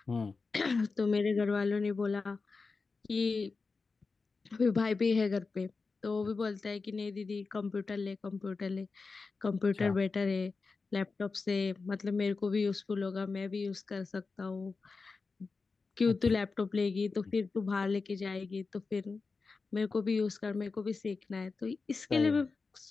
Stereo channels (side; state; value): right; quieter; 4.3 dB